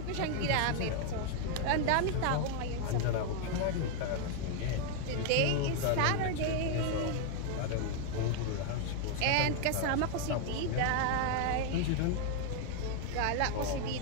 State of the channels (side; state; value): both; different; correlation 0.00